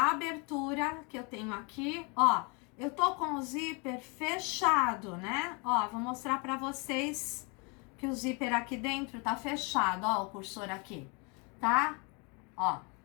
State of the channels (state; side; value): quieter; right; 31.9 dB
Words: abertura que eu tenho aqui, ó. Eu tô com o zíper fechado, né? Ó, vou mostrar para vocês que o zíper aqui dentro tá fechado, ó, o cursor aqui, tá? Ó.